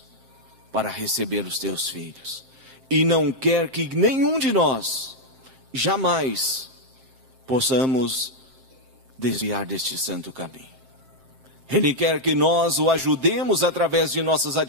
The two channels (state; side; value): late; left; 7.5 ms